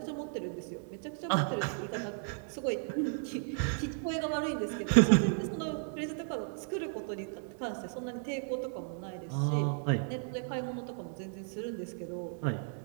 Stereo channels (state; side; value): silent; left; 55 dB below the other